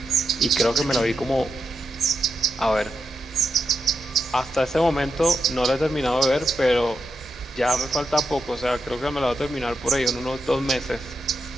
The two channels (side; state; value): both; normal; correlation 0.86